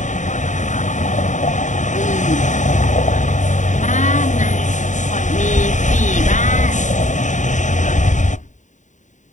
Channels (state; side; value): late; right; 0.36 ms